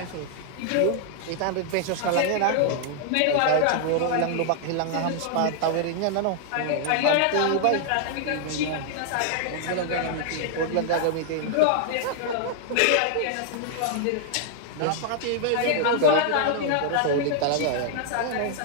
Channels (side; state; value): both; different; correlation 0.00